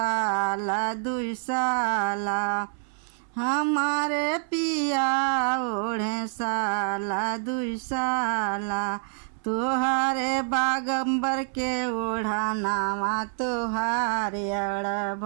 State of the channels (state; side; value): silent; left; 60 dB below the other